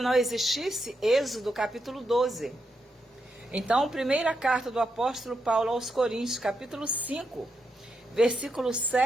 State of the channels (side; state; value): both; normal; correlation 0.83